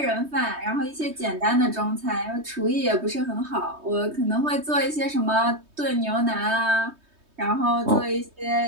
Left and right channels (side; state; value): left; late; 3.2 ms